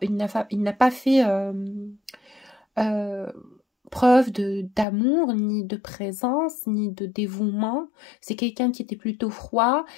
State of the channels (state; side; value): drops out; right; at 4.9 s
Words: preuve d'amour, ni de présence, ni de dévouement. C'est quelqu'un qui était plutôt froid